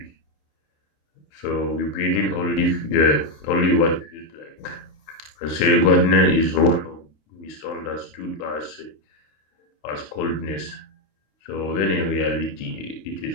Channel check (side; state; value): right; late; 27 ms